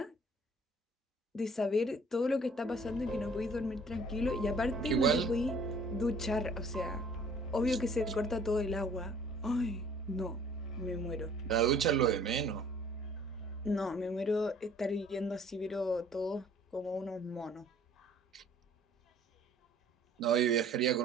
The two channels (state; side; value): normal; both; correlation 0.55